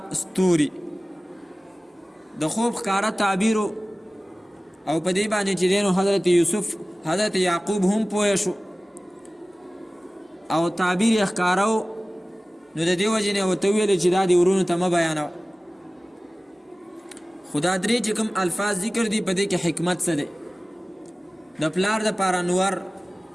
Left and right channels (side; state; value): both; normal; correlation 0.97